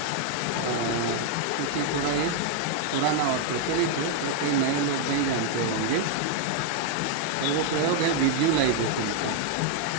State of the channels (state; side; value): different; both; correlation 0.00